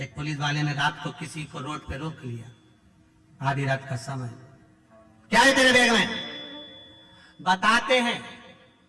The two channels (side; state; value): both; identical; correlation 1.00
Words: पुलिस वाले ने रात को किसी को रोड पे रोक लिया, आधी रात का समय, क्या है तेरे बैग में, बताते हैं,